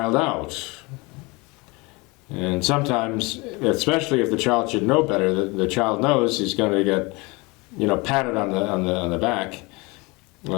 out. And sometimes, especially if the child should know better, the child knows he's going to get, patted on the back,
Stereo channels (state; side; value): quieter; right; 25.9 dB